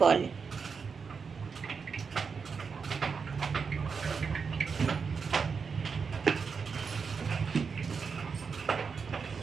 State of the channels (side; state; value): left; quieter; 5.5 dB